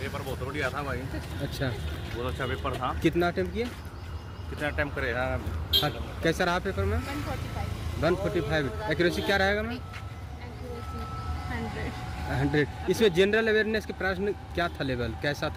बहुत बढ़िया था भाई। अच्छा, बहुत अच्छा पेपर था। कितना अटेम्प्ट किए? कितना अटेम्प्ट करे? हाँ, कैसा रहा पेपर में? 145। एक्यूरेसी क्या रहेगा मैम? 100। इसमें जनरल अवेयरनेस के प्रश्न क्या था, लेवल कैसा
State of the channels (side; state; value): both; identical; correlation 1.00